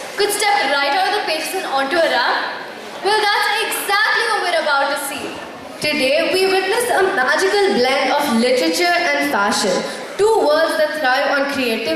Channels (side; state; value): both; identical; correlation 1.00